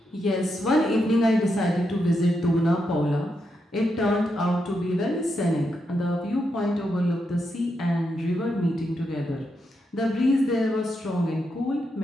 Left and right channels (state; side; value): normal; both; correlation 0.83